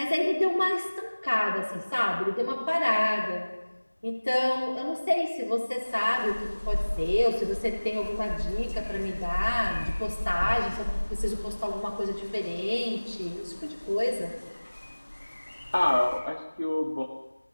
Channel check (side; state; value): both; inverted; correlation -1.00